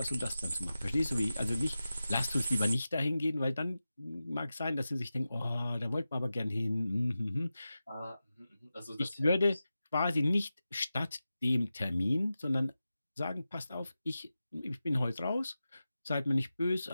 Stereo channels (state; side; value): inverted; both; correlation -0.93